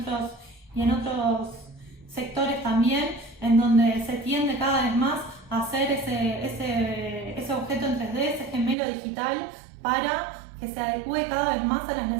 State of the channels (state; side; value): drops out; left; at 8.8 s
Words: otros sectores también, en donde se tiende cada vez más a hacer ese objeto en 3D, ese gemelo digital, para que se adecue cada vez más a las